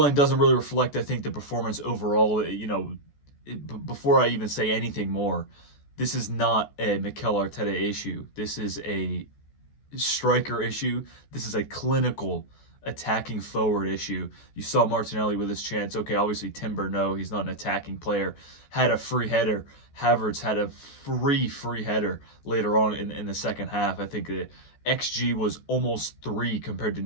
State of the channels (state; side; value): late; right; 14 ms